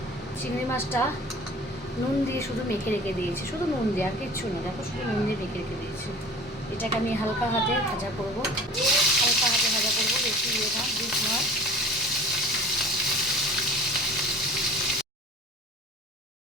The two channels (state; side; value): normal; both; correlation 0.42